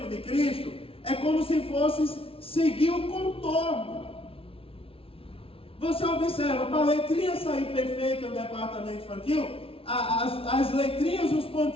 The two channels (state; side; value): late; right; 0.26 ms